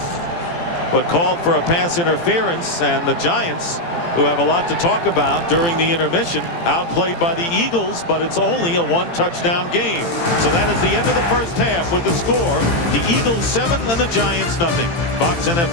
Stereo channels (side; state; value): right; late; 18 ms